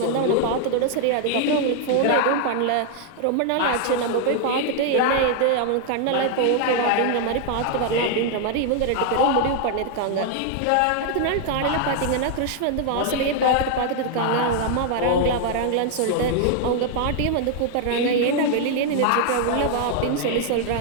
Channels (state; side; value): different; both; correlation 0.00